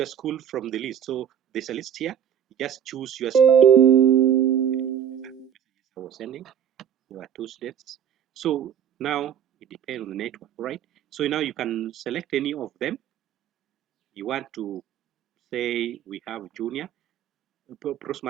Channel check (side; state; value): left; quieter; 9.0 dB